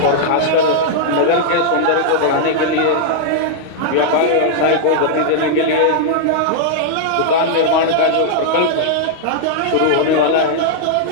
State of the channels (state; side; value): different; both; correlation -0.01